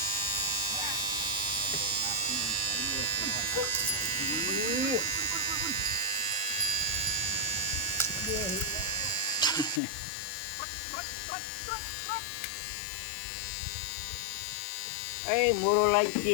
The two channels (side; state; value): right; drops out; at 9.8 s